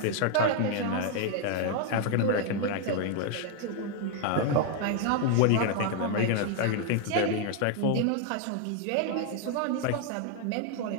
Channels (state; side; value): different; both; correlation 0.00